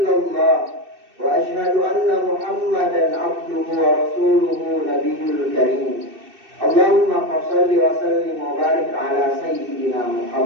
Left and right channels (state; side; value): late; left; 2.6 ms